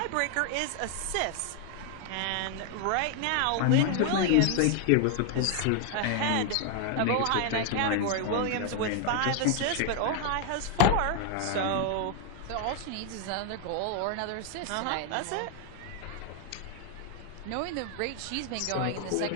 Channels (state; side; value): different; both; correlation 0.00